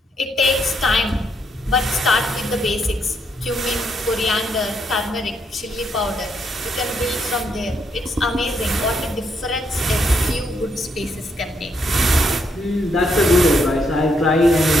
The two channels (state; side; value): normal; both; correlation 0.76